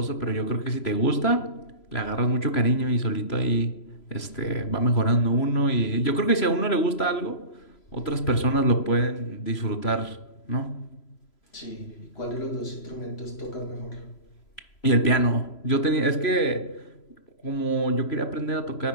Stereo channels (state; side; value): late; right; 3.0 ms